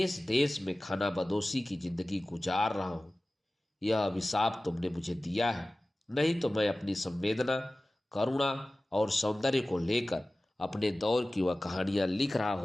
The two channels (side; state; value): both; normal; correlation 0.97